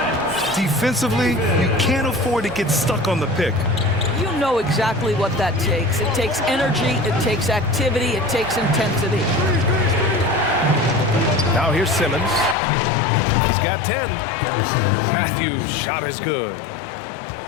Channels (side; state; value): right; drops out; at 12.6 s